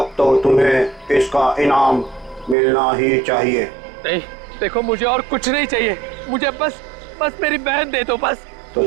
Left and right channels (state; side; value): drops out; left; at 2.6 s